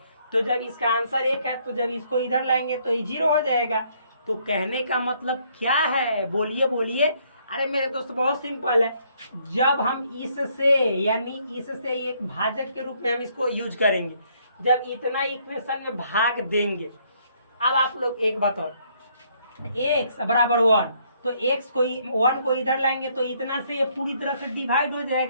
तो जब इसका आंसर 1 है तो जब इसको इधर लाएंगे तो ये 0 हो जाएगा। तो कहने का मतलब क्या है, बोलिए बोलिए। अरे मेरे दोस्त बहुत सिंपल है, जब हम इससे यानी इससे एक भाजक के रूप में हम इसको यूज करेंगे, जब इतना इक्वेशन में भाग देंगे। अब आप लोग एक बताओ, x बराबर 1 तो x को 1 को इधर लाएंगे तो इतना से ये पूरी तरह से डिवाइड हो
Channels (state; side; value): inverted; both; correlation -0.68